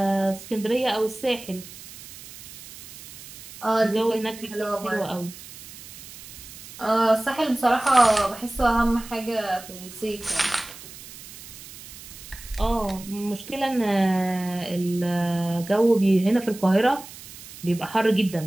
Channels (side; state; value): right; noise; hiss, 16 dB below the sound